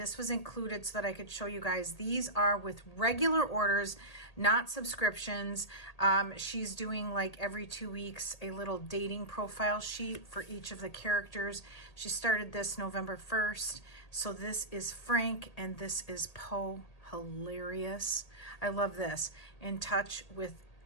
was included so that I could show you guys. These are with regular orders, not subscriptions. She's doing like every 2 weeks a little dating profile sheet for each of the characters. She started this November 1st. So this is Frank and this is Poe. Hilarious. I love this. In touch with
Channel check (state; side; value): late; right; 1.8 ms